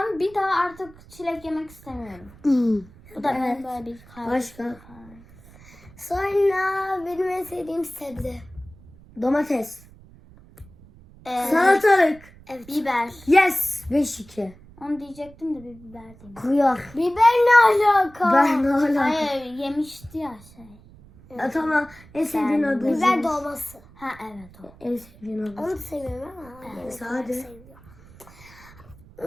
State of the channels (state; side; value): noise; right; rumble, 23 dB below the sound